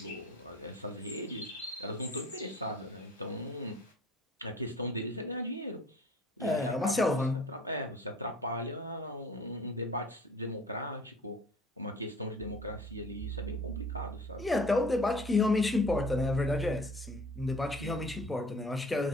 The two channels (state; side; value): normal; both; correlation 0.49